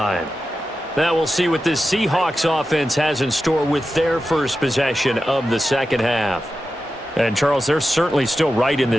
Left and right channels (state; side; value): normal; both; correlation 0.92